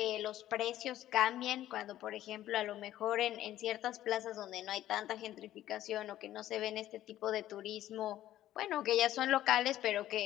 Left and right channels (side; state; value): right; quieter; 13.4 dB